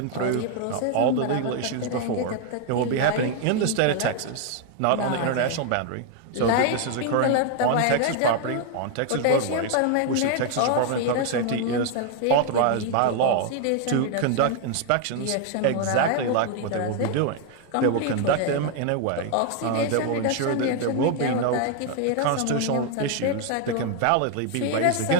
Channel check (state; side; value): different; both; correlation 0.00